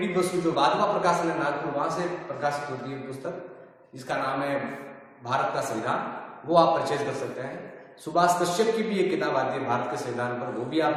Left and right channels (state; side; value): identical; both; correlation 1.00